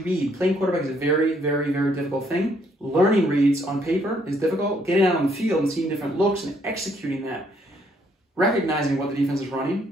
Playing quarterback is a very, very, very difficult thing. Learning reads on paper is difficult. Getting out on the field and seeing different looks and executing that, recognizing what the defense is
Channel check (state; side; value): normal; both; correlation 0.69